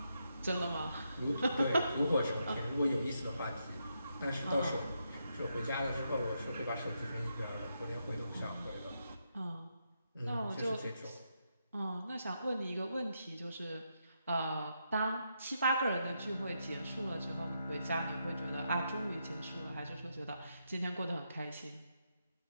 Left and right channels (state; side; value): inverted; both; correlation -0.82